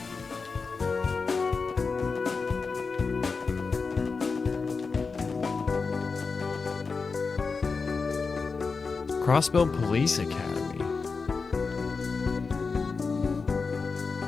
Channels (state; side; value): quieter; right; 4.6 dB